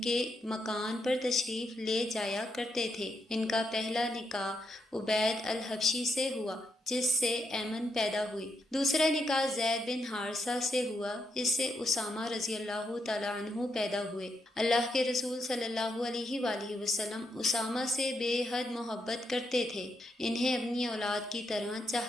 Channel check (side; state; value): both; normal; correlation 0.81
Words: کے مکان پر تشریف لے جایا کرتے تھے۔ ان کا پہلا نکاح عبید الحبشی سے ہوا، جس سے ایمن پیدا ہوئی۔ دوسرا نکاح زید بن حارثہ سے ہوا، اس سے اسامہ رضی اللہ تعالیٰ عنہ پیدا ہوئے۔ اللہ کے رسول صلی اللہ علیہ وآلہ وسلم اسامہ سے بے حد محبت کرتے تھے، انہیں اپنی اولاد کی طرح